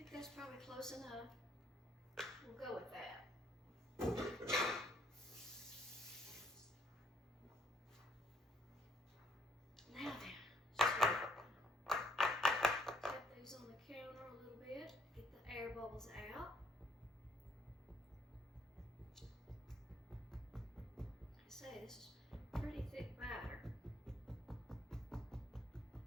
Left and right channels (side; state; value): both; normal; correlation 0.68